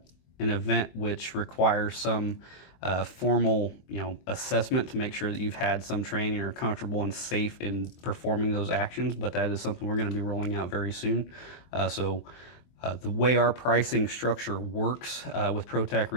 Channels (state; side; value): late; right; 23 ms